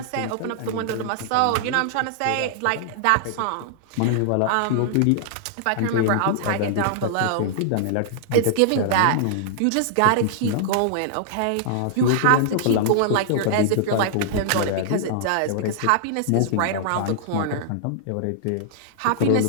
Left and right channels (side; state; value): both; different; correlation -0.01